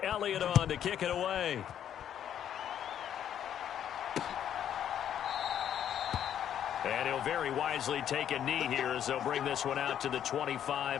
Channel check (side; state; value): right; quieter; 9.9 dB